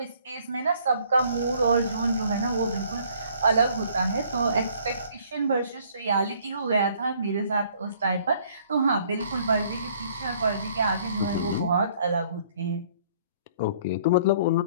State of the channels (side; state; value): both; inverted; correlation -0.60